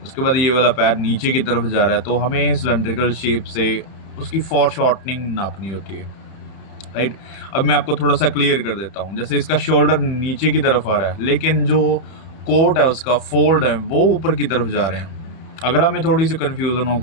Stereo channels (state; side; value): late; right; 31 ms